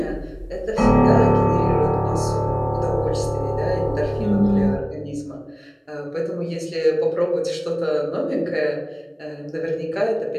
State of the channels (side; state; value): both; identical; correlation 1.00